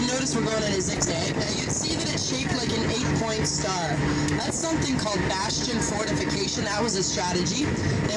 notice we're going in a zigzag. Now, you'd see that it's shaped like an 8-point star. That's something called bastion fortification. That was a strategy.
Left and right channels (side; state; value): both; identical; correlation 1.00